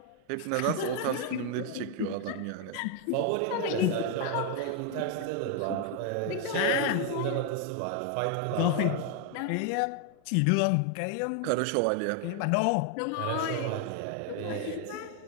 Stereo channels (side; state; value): both; different; correlation 0.00